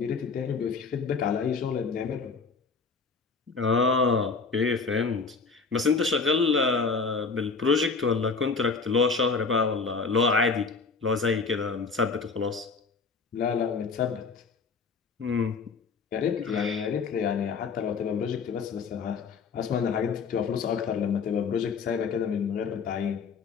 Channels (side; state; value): right; quieter; 4.8 dB